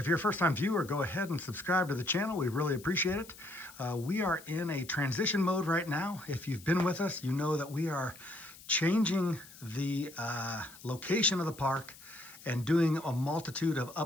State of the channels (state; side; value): noise; left; hiss, 19 dB below the sound